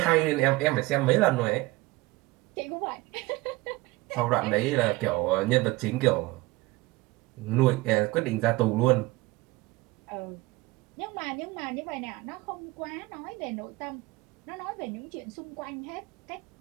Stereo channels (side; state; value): left; quieter; 21.1 dB